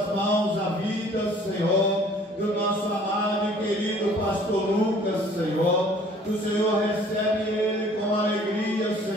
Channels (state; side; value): normal; both; correlation 0.54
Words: mãos a vida, Senhor, do nosso amado e querido pastor Lucas, Senhor. O Senhor recebe ele com alegria,